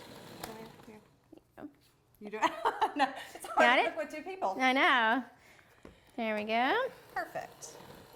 you go. You do it? No, it's hard Got to it? cook with 2 people. I know. There we go. Perfect.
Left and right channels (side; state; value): both; identical; correlation 1.00